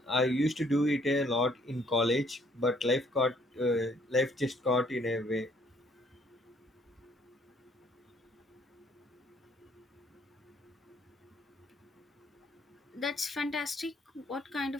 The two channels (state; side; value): normal; both; correlation 0.64